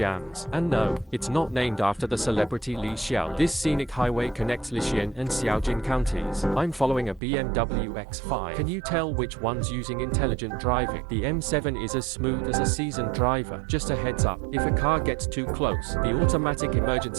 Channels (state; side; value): drops out; left; at 7.2 s